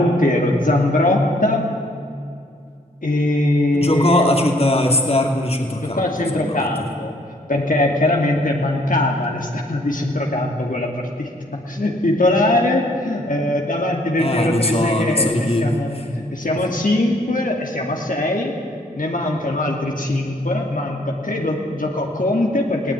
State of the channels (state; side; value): normal; both; correlation 0.63